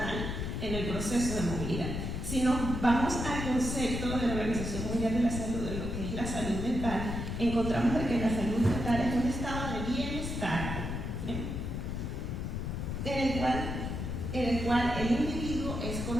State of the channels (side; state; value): left; noise; rumble, 3 dB below the sound